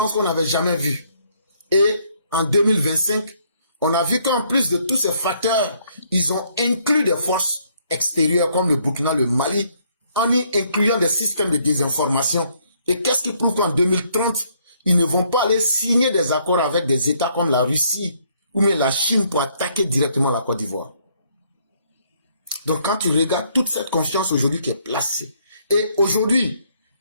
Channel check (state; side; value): inverted; both; correlation -0.68